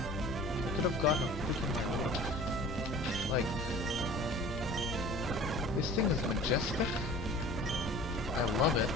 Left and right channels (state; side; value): normal; both; correlation 0.44